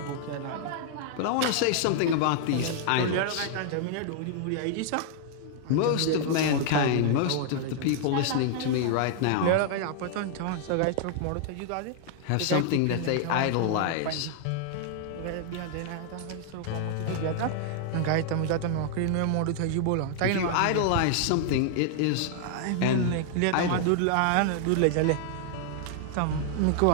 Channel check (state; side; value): different; both; correlation 0.00